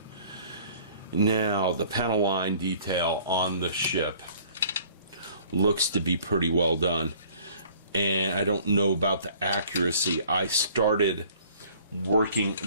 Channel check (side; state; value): both; inverted; correlation -0.54